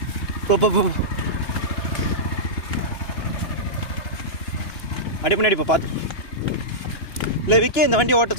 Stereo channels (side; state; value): right; late; 2.9 ms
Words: அப்படியே முன்னாடி போ பார்த்து. இல்லை விக்கி இந்த வண்டி ஓட்ட